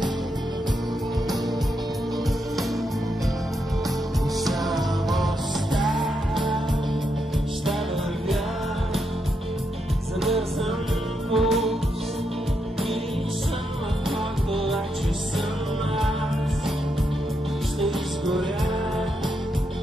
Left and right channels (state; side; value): normal; both; correlation 0.81